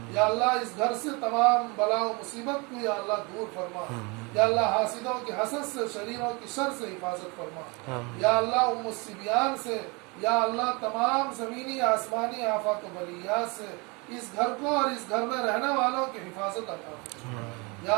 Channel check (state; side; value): quieter; left; 28.5 dB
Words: یا اللہ اس گھر سے تمام بلا و مصیبت کو یا اللہ دور فرما، یا اللہ حاسدوں کی حسد سے شریروں کی شر سے حفاظت فرما، یا اللہ ام الصبیان سے یا اللہ تمام زمینی آسمانی آفات و بلیات سے اس گھر کو اور اس گھر میں رہنے والوں کی حفاظت عطا فرما،